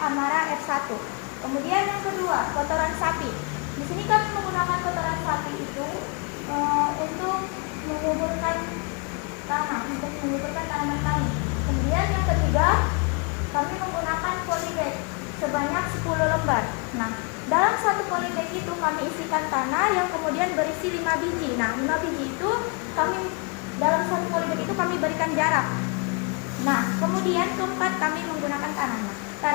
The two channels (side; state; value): right; quieter; 34.3 dB